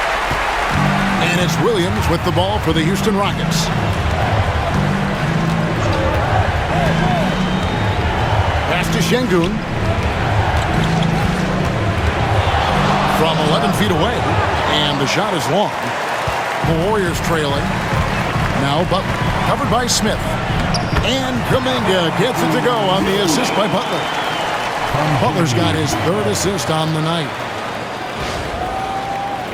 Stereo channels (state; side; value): identical; both; correlation 1.00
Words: And it's Williams with the ball for the Houston Rockets. Pass to Şengün. From 11 feet away. And the shot is long. The Warriors trailing. Now Butler. Covered by Smith. And Kuminga gets it to go on the assist by Butler. Butler's got his 3rd assist on the night.